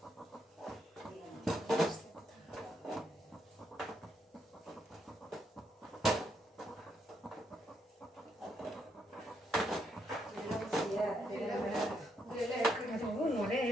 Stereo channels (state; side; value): normal; both; correlation 0.77